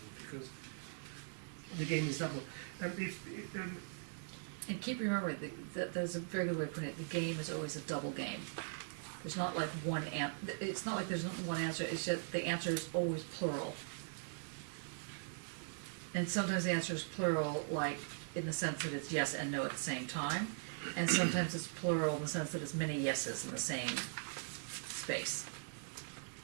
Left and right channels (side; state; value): left; silent; digital silence